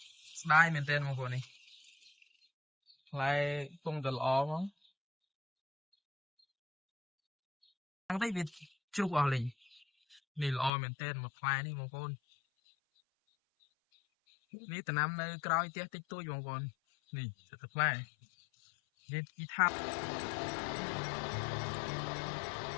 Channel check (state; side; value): drops out; right; at 10.7 s